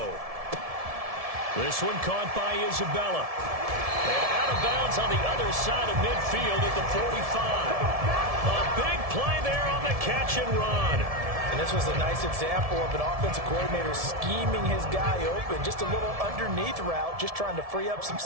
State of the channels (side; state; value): left; late; 1.7 ms